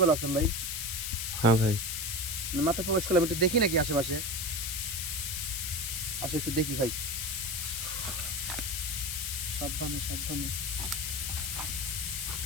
আসলাম ভাই? হ্যাঁ ভাই। মাত্র প্রবেশ করলাম, একটু দেখি নাকি আশেপাশে, আসো একটু দেখি ভাই। সাবধানে সাবধানে।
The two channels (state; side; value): noise; left; hiss, 2 dB below the sound